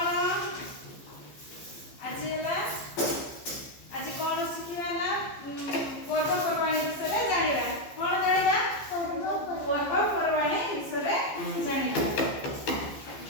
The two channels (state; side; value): late; right; 15 ms